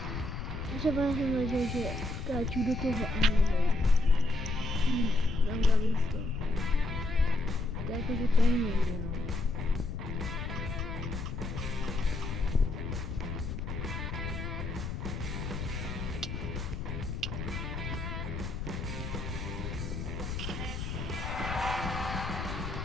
Třeba jsem věděl, že skáču do toho a nejde. Tam dali to. To je jako, že to nejde, no.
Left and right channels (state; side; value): noise; left; rumble, 5 dB below the sound